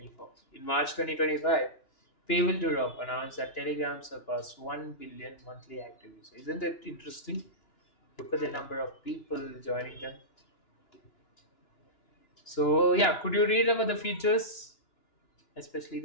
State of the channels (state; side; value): late; right; 2.9 ms